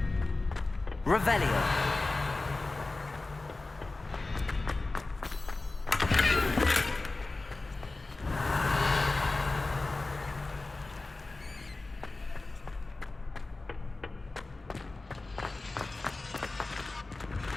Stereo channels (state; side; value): quieter; right; 3.3 dB